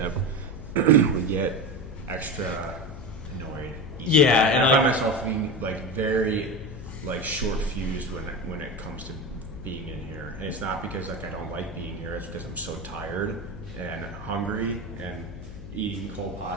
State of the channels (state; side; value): noise; left; hum, 12 dB below the sound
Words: we get extra annoyed. Yeah, and I find myself being like very like short fused when it comes to being in here, and it's not because like I don't like being here. It's because I'm so tired and hungry and eating cold